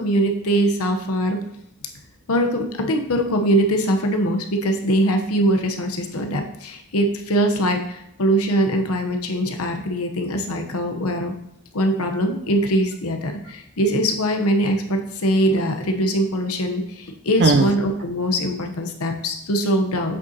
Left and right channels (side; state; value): both; normal; correlation 0.38